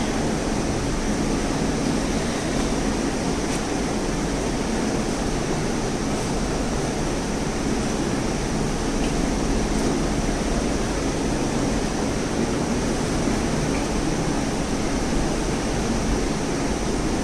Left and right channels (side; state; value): both; identical; correlation 1.00